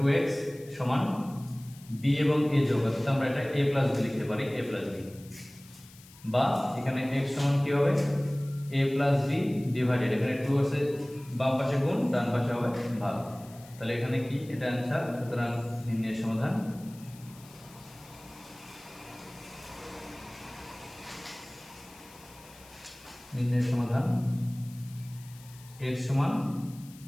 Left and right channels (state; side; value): noise; left; hiss, 22 dB below the sound